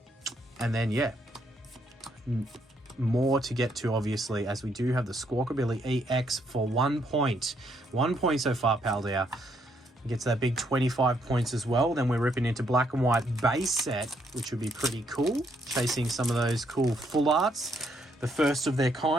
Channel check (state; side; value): normal; both; correlation 0.73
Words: then, yeah, more to get to, obviously, as we do have the Squawkabilly EX for 1 point. 1 point so far, Paldea. Gets that big 25 points as well. Then we're ripping into Black and White Base Set, which would be pretty cool. Chasing some of those cool full arts, the first of their